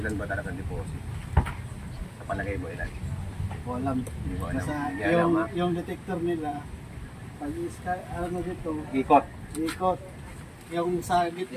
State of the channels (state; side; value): identical; both; correlation 1.00